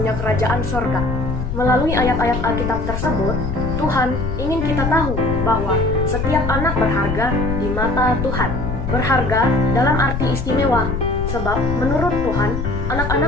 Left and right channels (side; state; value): left; noise; rumble, 4 dB below the sound